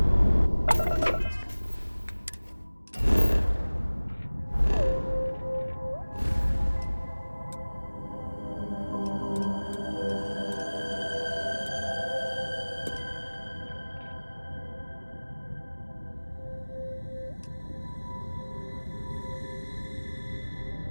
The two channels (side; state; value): both; inverted; correlation -1.00